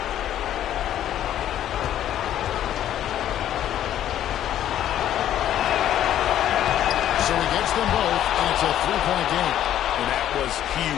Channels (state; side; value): quieter; right; 11.4 dB